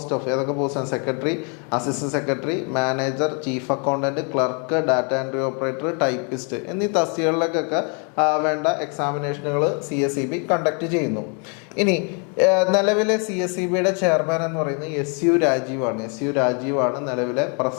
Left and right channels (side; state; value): right; quieter; 37.1 dB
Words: of ഏതൊക്കെ പോസ്റ്റാണ്? Secretary, assistant secretary, manager, chief accountant, clerk, data entry operator, typist എന്നീ തസ്തികകളിലേക്കൊക്കെ വേണ്ട എക്സാമിനേഷനുകൾ CSEB കണ്ടക്ട് ചെയ്യുന്നു. ഇനി നിലവിലെ CSEBയുടെ ചെയർമാൻ എന്ന് പറയുന്നത് SU രാജീവാണ് നിലവിലെ